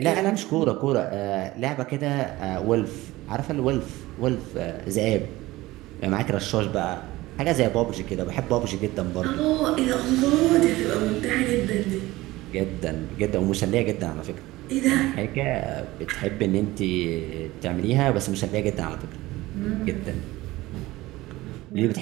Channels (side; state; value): left; quieter; 18.6 dB